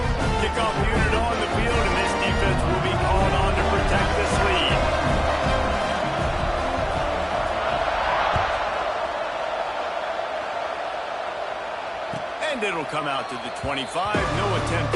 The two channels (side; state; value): both; identical; correlation 1.00